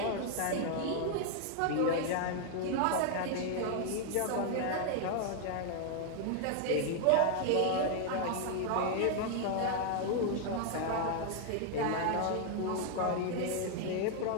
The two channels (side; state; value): both; different; correlation 0.00